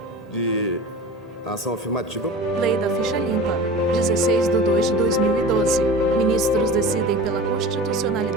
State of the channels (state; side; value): normal; both; correlation 0.35